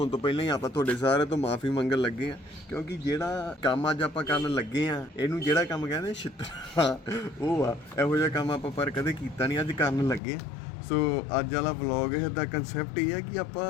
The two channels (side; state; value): right; drops out; at 10.2 s